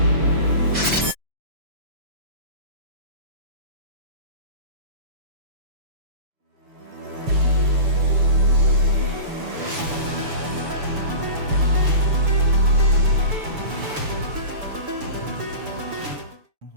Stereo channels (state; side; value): late; left; 6.9 ms